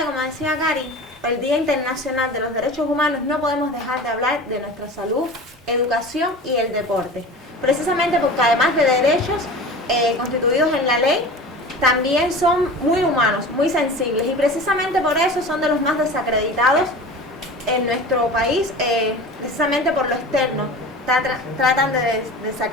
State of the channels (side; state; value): both; normal; correlation 0.35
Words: como decía Cari, el Día Internacional de los Derechos Humanos, no podemos dejar de hablar de nuestra salud, educación y el deporte. Precisamente porque además de derechos constituidos en la ley, también son muy humanos, muy sensibles, y precisamente por eso son de los más desacreditados en nuestro país, precisamente por lo externo. Tratan de